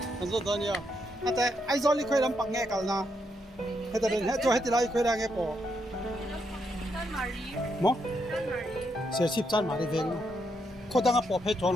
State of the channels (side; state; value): both; normal; correlation 0.79